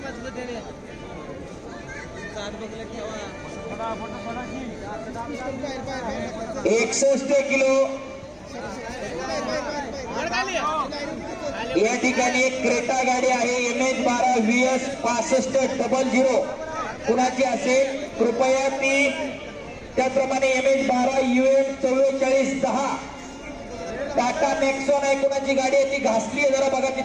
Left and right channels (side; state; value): both; identical; correlation 1.00